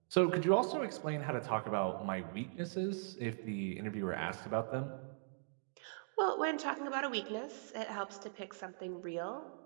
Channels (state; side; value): silent; left; digital silence